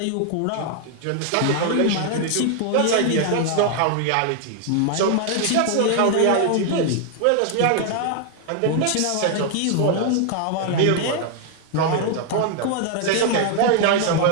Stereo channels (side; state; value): both; different; correlation 0.00